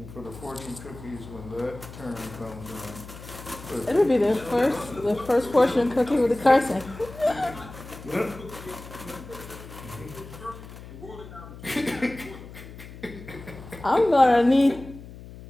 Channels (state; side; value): noise; left; hum, 15 dB below the sound